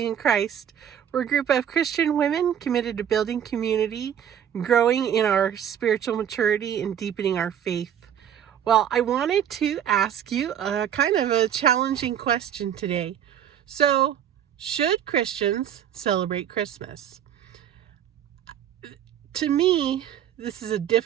and Christ. We're a group of Christian women committed to building community, growing in our spiritual maturity, and deepening our faith. Well, I wanted to ask you a kind of a challenging question today. So, should Christians celebrate Christmas? To me, this is a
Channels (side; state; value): left; quieter; 9.5 dB